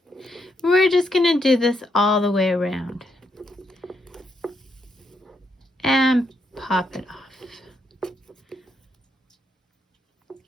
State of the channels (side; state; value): both; normal; correlation 0.78